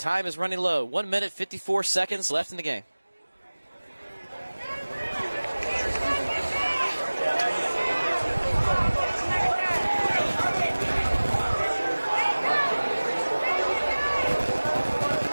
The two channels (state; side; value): inverted; both; correlation -1.00